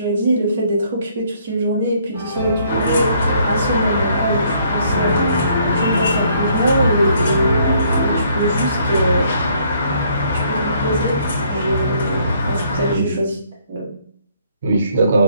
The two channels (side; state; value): both; inverted; correlation -0.66